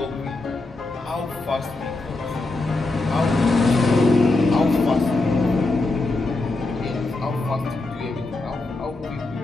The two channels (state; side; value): quieter; right; 3.1 dB